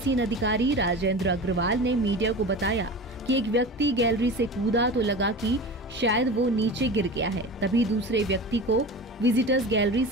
अधिकारी राजेंद्र अग्रवाल ने मीडिया को बताया कि एक व्यक्ति गैलरी से कूदा तो लगा कि शायद वो नीचे गिर गया है। तभी दूसरे व्यक्ति को विजिटर्स गैलरी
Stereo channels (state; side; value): normal; both; correlation 0.31